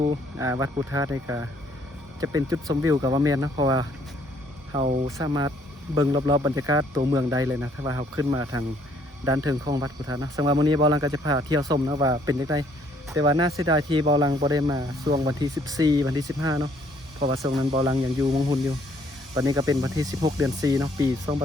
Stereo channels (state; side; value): normal; both; correlation 0.65